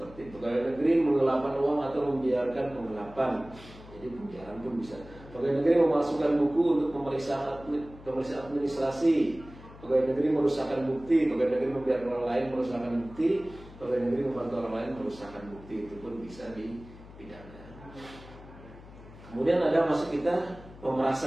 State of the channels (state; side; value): noise; left; hum, 18 dB below the sound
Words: pegawai negeri menggelapkan uang atau membiarkan penggelapan. Jadi penjara pun bisa. Pegawai negeri memasukkan buku untuk pemeriksaan administrasi. Pegawai negeri merusakkan bukti. Pegawai negeri membiarkan orang lain merusakkan bukti. Pegawai negeri membantu orang lain merusakkan bukti. Itu pun bisa dipidana. Kemudian ada masuk kita